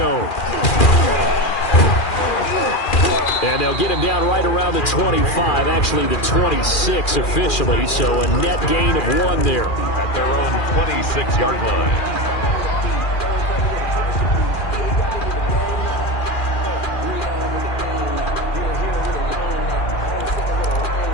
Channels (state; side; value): late; right; 2.4 ms